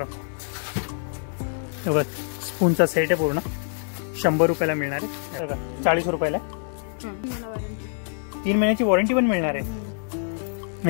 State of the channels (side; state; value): right; silent; 55 dB below the other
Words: बघा स्पूनचा सेट आहे पूर्ण 100 रुपयाला मिळणार आहे. बघा 40 रुपयाला. 3 महिन्याची वॉरंटी पण मिळणार आहे.